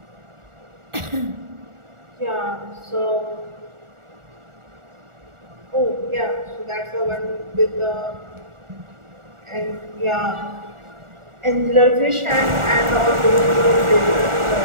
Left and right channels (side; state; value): left; late; 1.4 ms